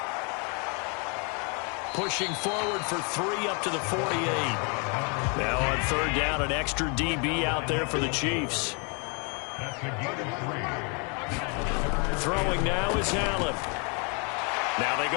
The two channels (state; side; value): quieter; right; 35.3 dB